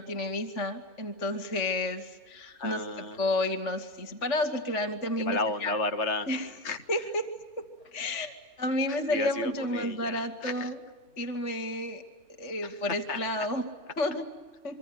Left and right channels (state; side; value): late; right; 3.4 ms